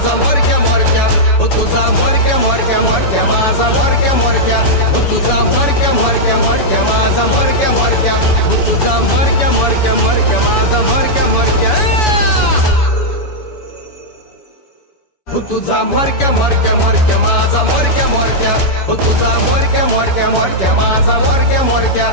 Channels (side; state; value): right; late; 7.0 ms